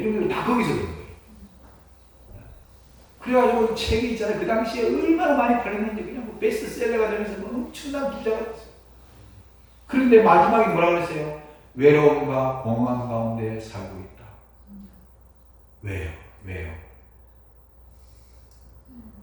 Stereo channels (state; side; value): identical; both; correlation 1.00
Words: 걸 다 거기서 그런 거예요. 그래가지고 책이 있잖아요. 그 당시에 얼마나 많이 팔렸는지 그냥 뭐 베스트셀러가 되면서 뭐 엄청난 부자가 됐어요. 그런데 마지막에 뭐라 그랬어요? 외로움과 공허함 가운데 살고 있다. 왜요? 왜요?